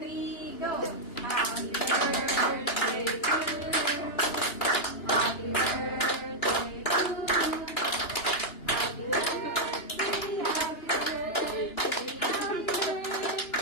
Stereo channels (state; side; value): late; right; 2.9 ms